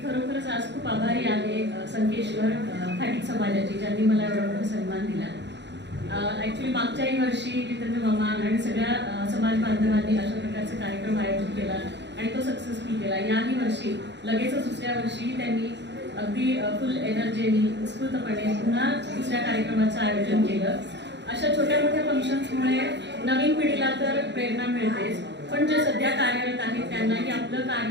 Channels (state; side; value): late; left; 0.51 ms